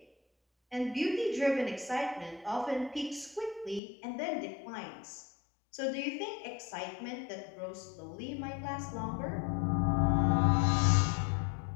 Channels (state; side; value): drops out; right; at 3.8 s